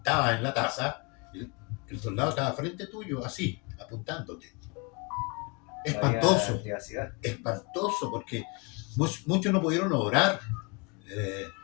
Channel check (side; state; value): right; quieter; 31.2 dB